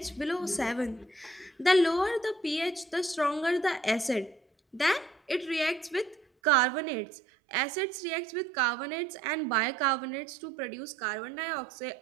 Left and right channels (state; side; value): drops out; left; at 6.2 s